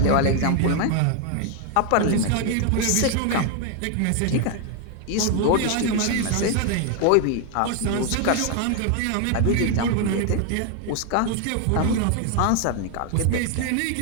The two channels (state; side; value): different; both; correlation 0.01